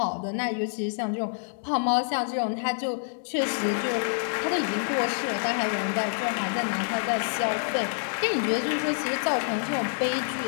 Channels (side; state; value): right; silent; 60 dB below the other